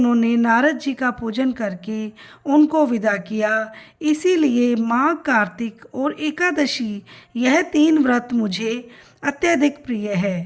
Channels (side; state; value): both; identical; correlation 1.00